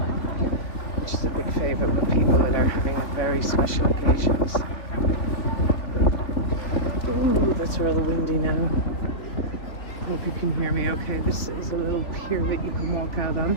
which is a big favourite with people that are having very special occasions. Ooh, that's rather windy now. Hope you can hear me okay. This is a little pier that you can walk out on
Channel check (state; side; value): late; right; 3.2 ms